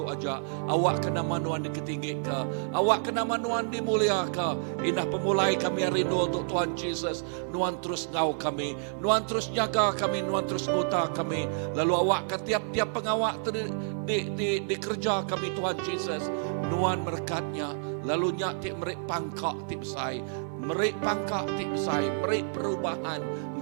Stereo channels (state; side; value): silent; left; 58 dB below the other